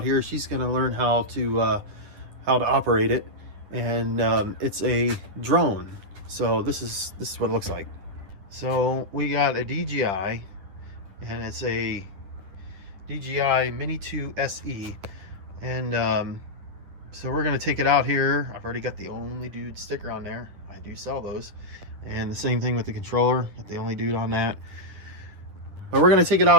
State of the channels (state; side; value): late; left; 10 ms